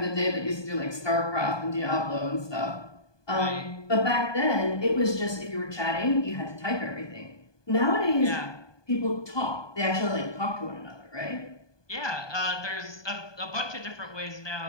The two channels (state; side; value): late; right; 1.2 ms